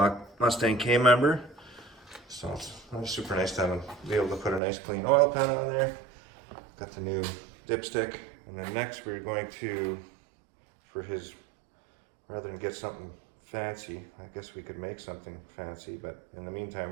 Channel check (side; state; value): left; drops out; at 4.6 s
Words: Mustang K-member. So it's super nice to be able to put a nice clean oil pan on there. Got the new dipstick. And then next we're going to, rather than get something fancy, I guess we could make something fancy, but in the meantime